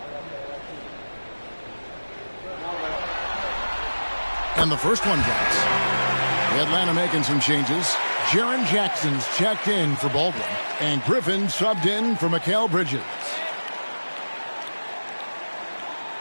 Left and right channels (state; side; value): inverted; both; correlation -1.00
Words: And the first one drops. Atlanta making some changes. Jaren Jackson's checked in for Baldwin. And Griffin subbed in for Mikal Bridges.